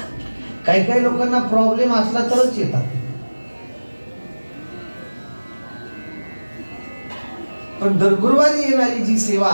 काही काही लोकांना प्रॉब्लेम असला तरच येतात. पण दर गुरुवारी येणारी जी सेवा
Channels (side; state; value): both; inverted; correlation -1.00